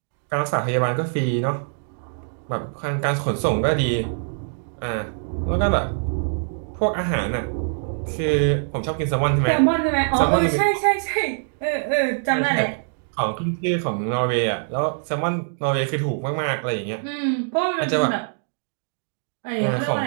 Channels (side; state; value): left; silent; digital silence